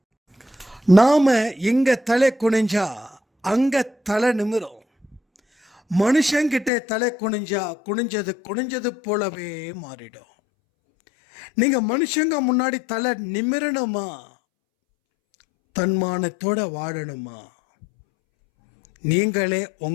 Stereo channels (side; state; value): right; drops out; at 6.7 s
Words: நாம இங்க தலை குனிஞ்சா அங்க தலை நிமிரும். மனுஷங்கிட்ட தலை குனிஞ்சா குனிஞ்சது போலவே மாறிடும். நீங்க மனுஷங்க முன்னாடி தலை நிமிரணுமா, தன்மானத்தோட வாழணுமா, நீங்களே